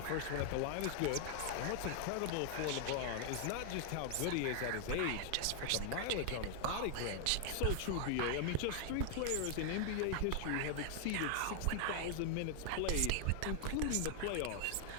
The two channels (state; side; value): different; both; correlation 0.00